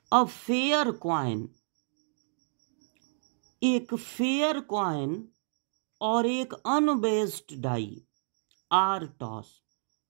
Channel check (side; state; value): left; silent; digital silence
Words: A fair coin, एक फेयर कॉइन और एक unbiased die are toss.